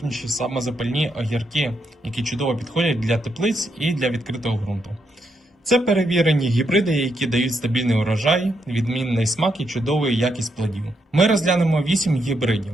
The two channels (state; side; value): normal; both; correlation 0.80